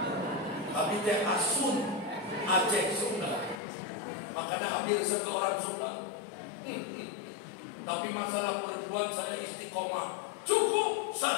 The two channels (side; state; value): right; drops out; at 3.6 s